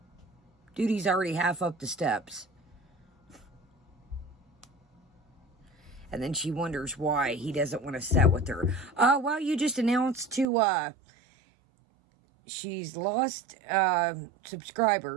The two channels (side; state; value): left; drops out; at 10.5 s